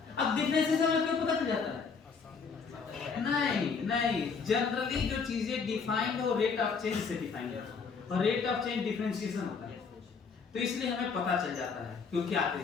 अब डिफरेंशिएशन में क्यों पता चल जाता है? नहीं, जनरली जो चीजें डिफाइंड हो रेट ऑफ चेंज से डिफाइंड है, और रेट ऑफ चेंज डिफरेंशिएशन होता है, तो इसलिए हमें पता चल जाता है क्यों क्या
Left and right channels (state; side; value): quieter; right; 5.5 dB